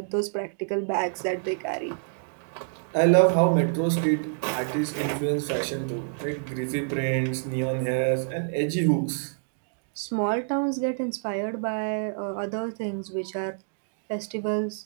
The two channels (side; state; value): left; silent; digital silence